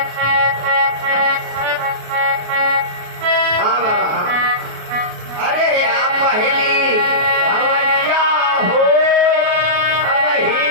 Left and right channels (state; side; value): late; left; 33 ms